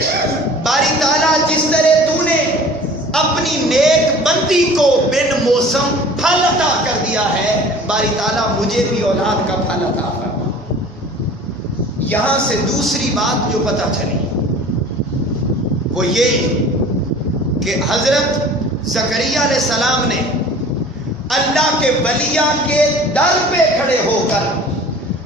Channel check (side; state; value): both; normal; correlation 0.45